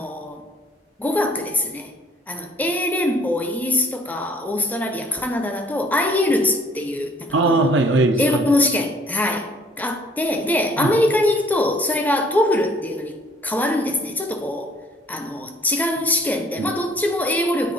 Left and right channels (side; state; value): both; normal; correlation 0.58